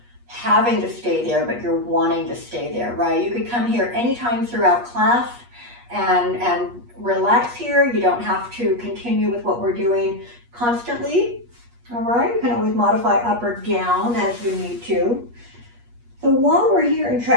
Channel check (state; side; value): late; left; 8.4 ms